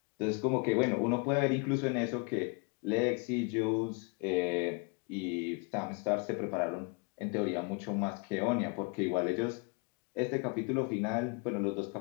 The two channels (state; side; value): quieter; right; 33.4 dB